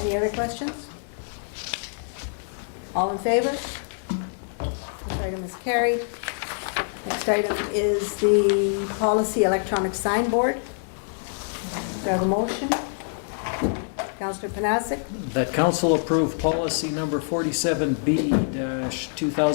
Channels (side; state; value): right; silent; 59 dB below the other